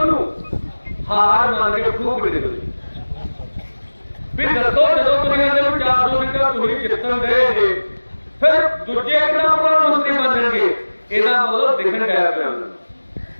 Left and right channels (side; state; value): both; inverted; correlation -1.00